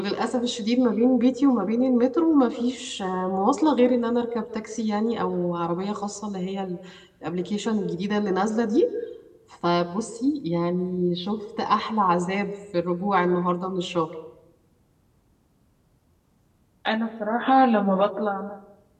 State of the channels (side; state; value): both; identical; correlation 1.00